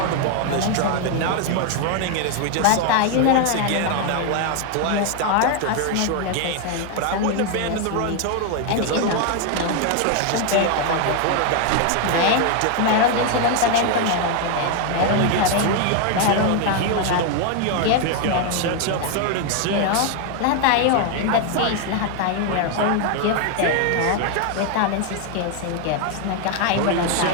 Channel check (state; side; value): different; both; correlation 0.00